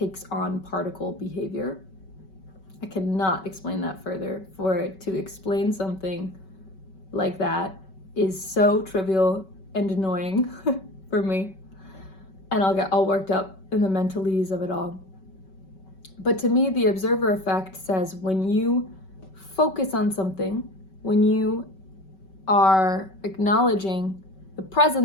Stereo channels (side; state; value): right; late; 5.3 ms